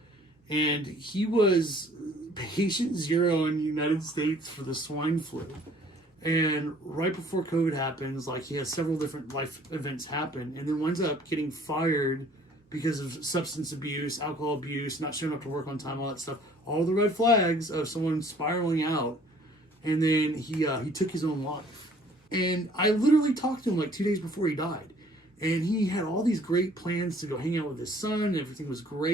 and he was patient zero in the United States for the swine flu. And right before COVID happens, he has several different life events happen, and then winds up getting fired because of substance abuse, alcohol abuse, not showing up to work on time, all that stuff. All the red flags of someone spiraling out, and then he took his own life. And I literally talked to him 2 days before he died, and he had all these great plans to go hang out with his son, and everything was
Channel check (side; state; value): both; normal; correlation 0.56